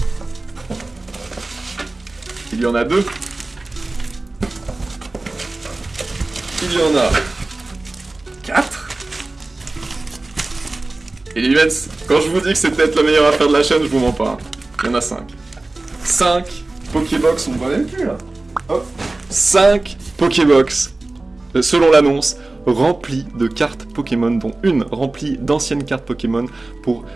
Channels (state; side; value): quieter; left; 3.1 dB